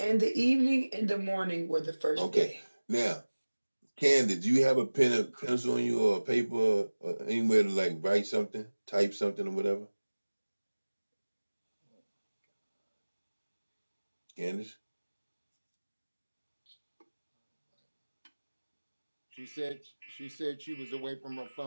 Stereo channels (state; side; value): inverted; both; correlation -1.00